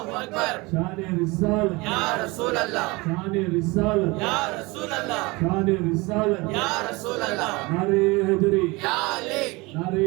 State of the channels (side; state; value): left; quieter; 24.3 dB